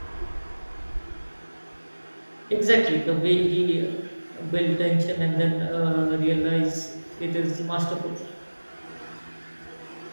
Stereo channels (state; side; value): inverted; both; correlation -1.00